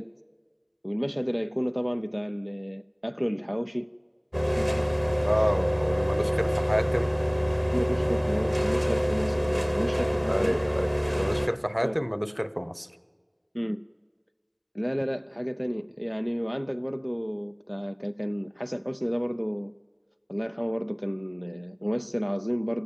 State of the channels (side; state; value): both; identical; correlation 1.00